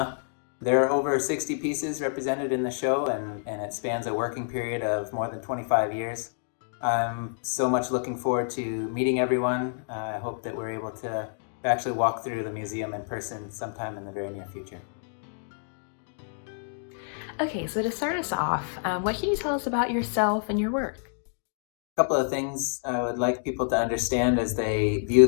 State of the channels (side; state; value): right; silent; digital silence